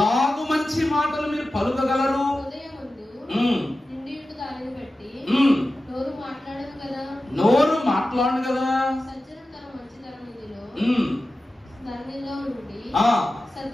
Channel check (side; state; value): both; normal; correlation 0.94